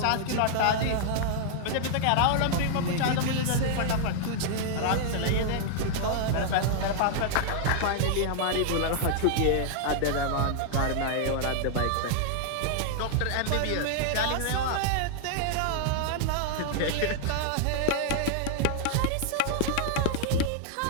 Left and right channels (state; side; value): different; both; correlation -0.01